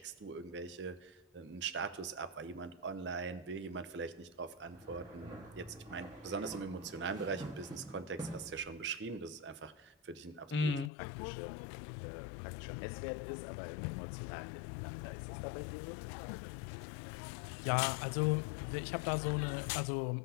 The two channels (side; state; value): right; drops out; at 10.9 s